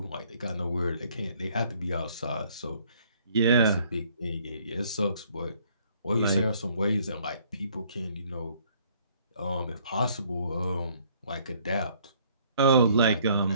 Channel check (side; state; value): both; inverted; correlation -0.62